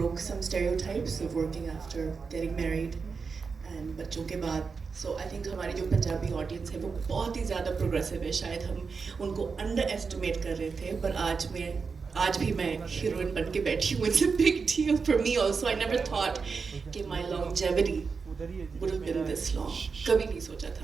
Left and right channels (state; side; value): quieter; left; 5.1 dB